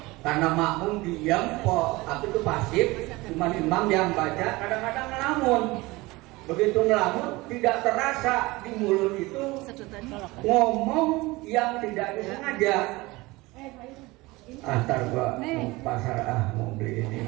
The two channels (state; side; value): quieter; left; 21.6 dB